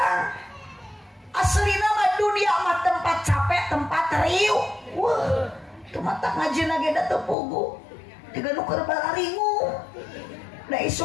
Aslina mah dunia mah tempat capek, tempat riuh. Wah, itu mata ngajina ge da teu pugu. Tiga nu keur bararingu. Da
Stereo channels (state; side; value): drops out; right; at 7.4 s